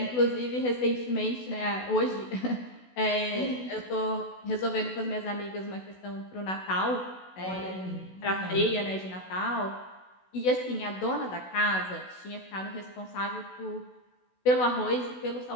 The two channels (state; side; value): late; right; 16 ms